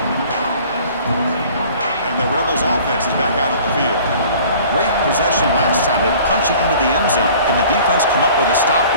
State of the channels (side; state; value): both; inverted; correlation -0.49